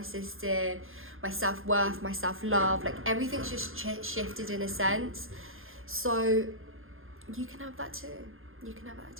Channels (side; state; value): left; late; 0.60 ms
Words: system, my self-worth, my self-love, like everything's just shifted in a sense. So you can have that too. You can have that